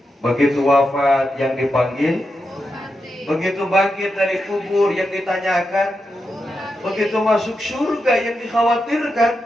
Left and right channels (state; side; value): normal; both; correlation 0.87